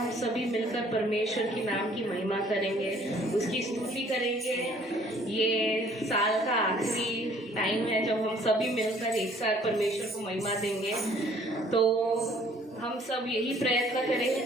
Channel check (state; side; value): normal; both; correlation 0.58